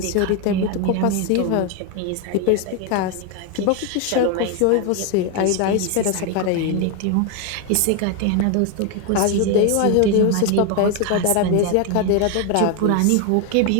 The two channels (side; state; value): both; different; correlation 0.01